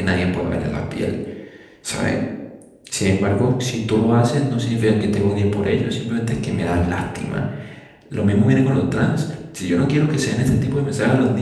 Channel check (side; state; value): both; identical; correlation 1.00